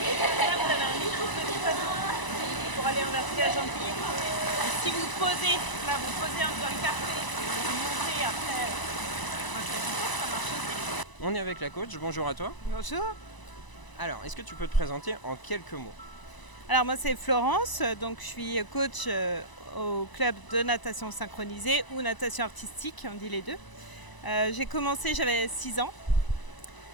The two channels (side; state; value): right; late; 1.0 ms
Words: Là, vous avez un micro petit bateau pour aller en vertige gentil. Si vous posez, là vous posez dans le carré, vous montez après. Ça marche aussi. On est avec la coach, bonjour à toi. Bonjour. Alors, est-ce que tu peux te présenter en quelques mots? Alors moi c'est Florence, donc je suis coach au club de natation synchronisée ou natation artistique, on dit les deux. J'ai commencé, j'avais 6 ans,